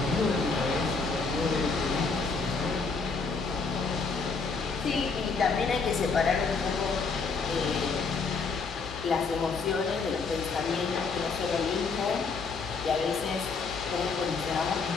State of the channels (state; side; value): quieter; right; 4.7 dB